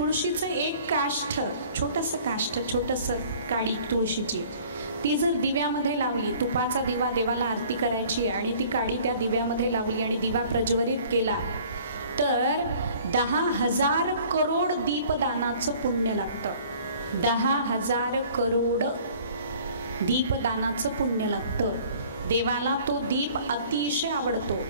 एक काष्ठ, छोटंसं काडी तुळशीची, ती जर दिव्यामध्ये लावली, तुपाचा दिवा देवाला आरती करायची आणि ती काडी त्या दिव्यामध्ये लावली आणि दिवा प्रज्वलित केला तर 10,000 करोड दीपदानाचं पुण्य लागतं. 10,000 करोड दीपदानाचं पुण्य लागतं. देवाला तो दीप अतिशय आवडतो.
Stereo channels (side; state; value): both; inverted; correlation -0.52